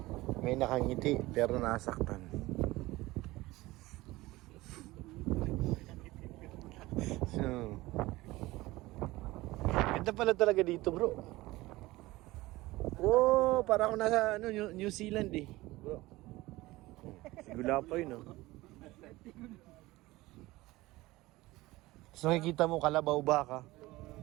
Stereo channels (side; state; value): left; quieter; 19.3 dB